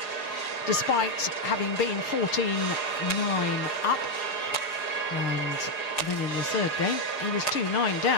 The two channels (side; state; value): right; late; 6.6 ms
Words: despite having been 14-9 up. And then in the third game, he was 2-9